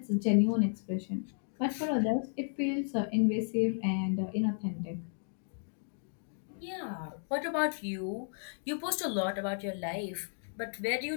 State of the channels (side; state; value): right; silent; digital silence